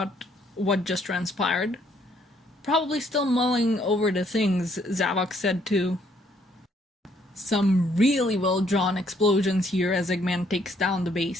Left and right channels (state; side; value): normal; both; correlation 0.68